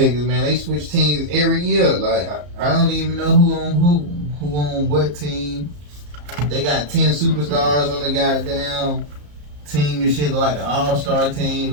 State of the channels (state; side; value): late; left; 34 ms